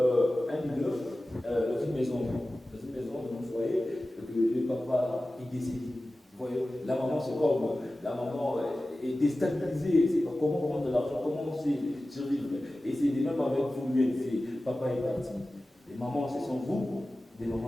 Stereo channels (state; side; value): normal; both; correlation 0.96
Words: leader, dans une maison, dans un foyer, que le papa est décédé, vous voyez, la maman c'est comme, la maman est déstabilisée, c'est pas comment prendre de l'argent, comment survivre. Et c'est de même avec vous, c'est papa est parti. Les mamans, ce sont vous, des mamans,